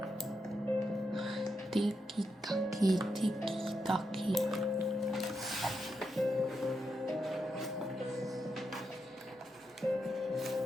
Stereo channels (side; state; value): both; normal; correlation 0.84